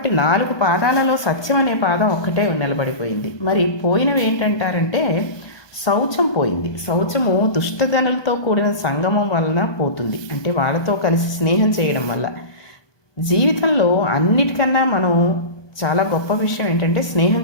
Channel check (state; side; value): late; right; 1.2 ms